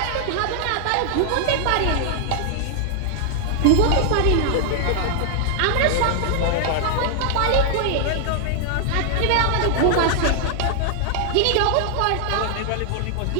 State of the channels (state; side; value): different; both; correlation 0.00